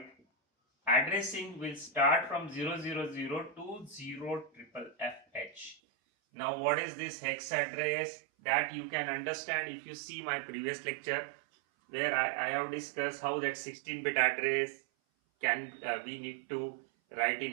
addressing will start from 000 to 0FFH. Now what is this hex address? That you can understand if you see my previous lecture, where I have discussed how that 16-bit address can we need to write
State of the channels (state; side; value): drops out; left; at 5.8 s